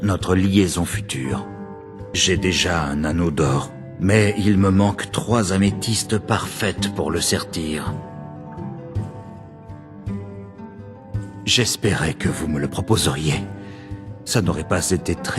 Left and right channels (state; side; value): identical; both; correlation 1.00